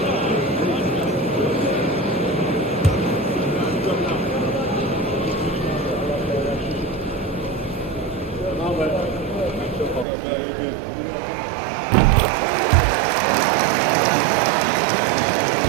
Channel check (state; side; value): drops out; left; at 10.1 s